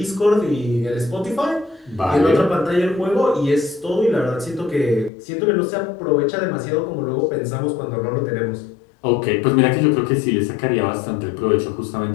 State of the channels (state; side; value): drops out; right; at 5.1 s